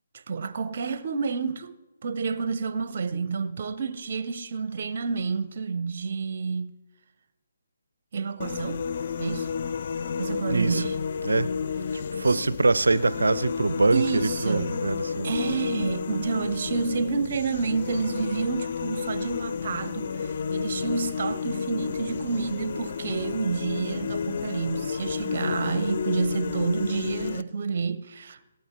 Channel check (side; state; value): both; inverted; correlation -0.83